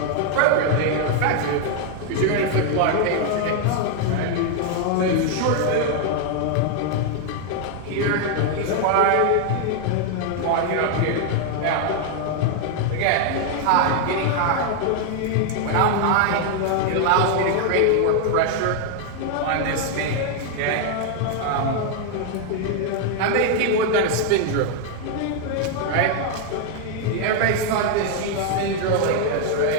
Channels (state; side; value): different; both; correlation 0.00